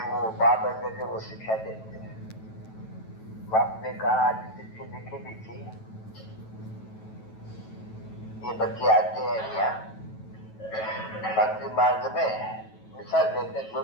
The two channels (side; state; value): right; late; 9.2 ms